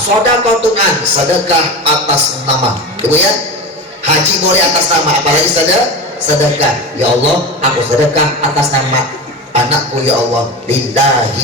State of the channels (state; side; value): normal; both; correlation 0.26